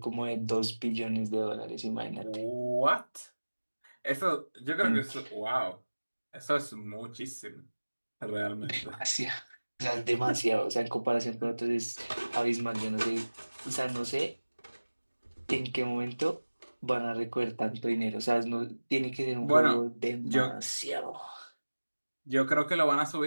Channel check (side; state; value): both; inverted; correlation -1.00